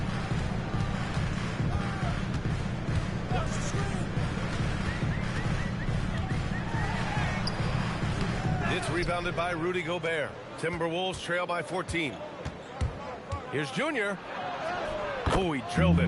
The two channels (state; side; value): identical; both; correlation 1.00